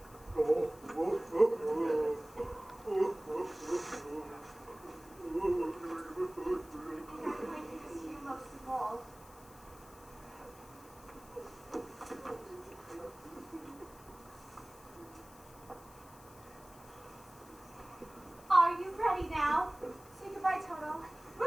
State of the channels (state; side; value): noise; left; hiss, 22 dB below the sound